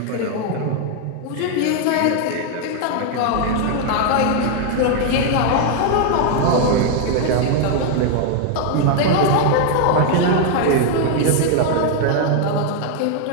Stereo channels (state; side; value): different; both; correlation 0.00